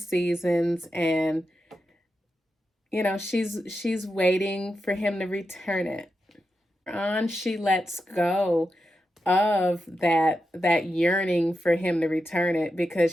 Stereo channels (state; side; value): normal; both; correlation 0.88